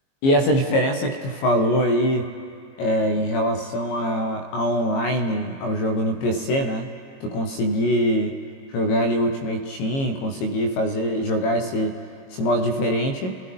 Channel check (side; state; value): right; late; 22 ms